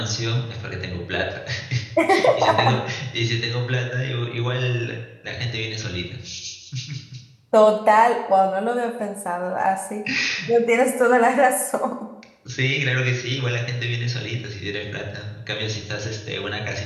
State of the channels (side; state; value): both; identical; correlation 1.00